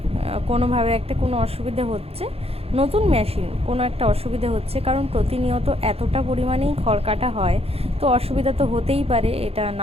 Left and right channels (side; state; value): left; late; 0.29 ms